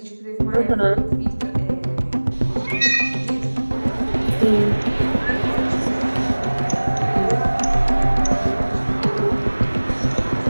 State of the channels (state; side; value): inverted; both; correlation -1.00